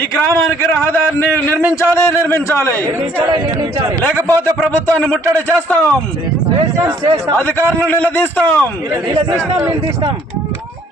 ఈ గ్రామానికి రహదారిని నిర్మించాలి. లేకపోతే ప్రభుత్వాన్ని ముట్టడి చేస్తాం, అధికారులను నిలదీస్తాం.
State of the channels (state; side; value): normal; both; correlation 0.62